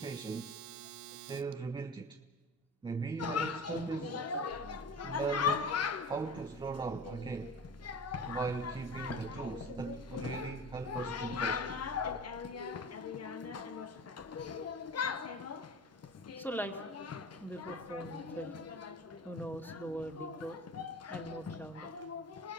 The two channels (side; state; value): both; normal; correlation 0.34